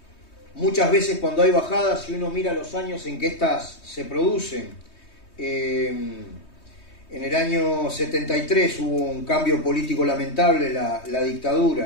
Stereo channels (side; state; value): right; late; 3.2 ms